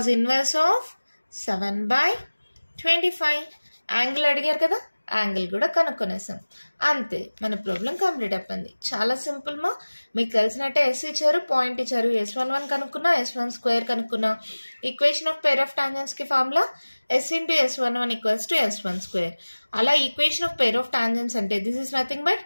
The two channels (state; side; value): inverted; both; correlation -1.00